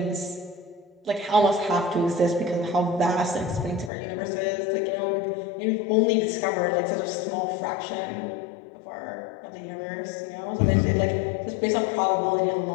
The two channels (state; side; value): drops out; right; at 3.9 s